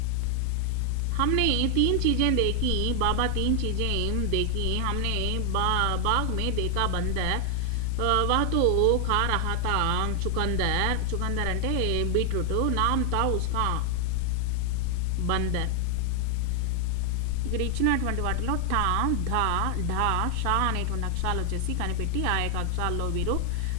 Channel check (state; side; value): different; both; correlation 0.00